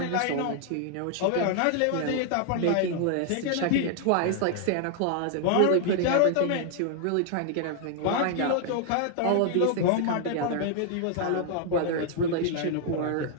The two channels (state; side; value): different; both; correlation 0.00